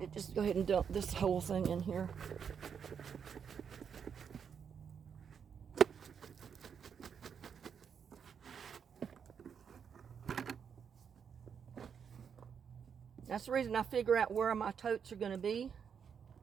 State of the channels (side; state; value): left; quieter; 7.1 dB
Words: just go ahead and dump this whole thing in here. That's the reason I figure out where my totes are going to be